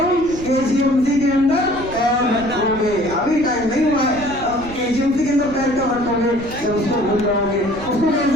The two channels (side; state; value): right; noise; rumble, 15 dB below the sound